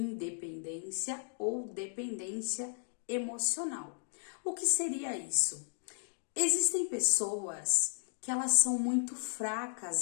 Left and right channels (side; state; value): right; silent; digital silence